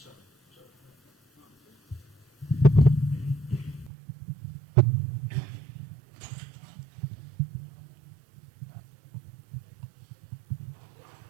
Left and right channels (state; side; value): drops out; left; at 3.9 s